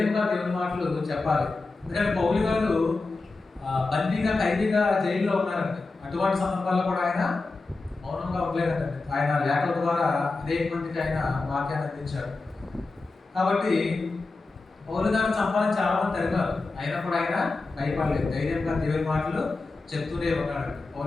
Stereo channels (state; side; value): quieter; right; 3.6 dB